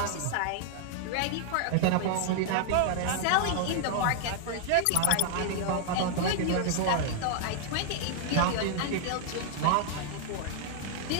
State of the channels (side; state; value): both; different; correlation 0.00